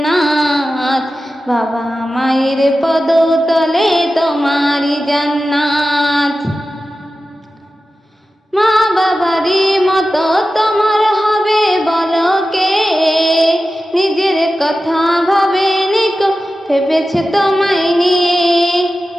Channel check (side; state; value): both; normal; correlation 0.94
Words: বাবা মায়ের পদতলে তোমারি জান্নাত। মা বাবারই মতো তোমার হবে বলো কে, নিজের কথা ভাবেনি কো ভেবেছে তোমায় নিয়ে।